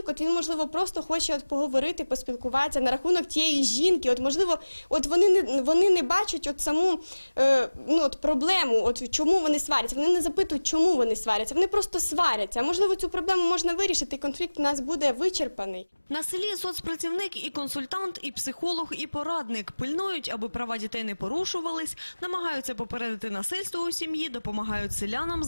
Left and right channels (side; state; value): both; inverted; correlation -1.00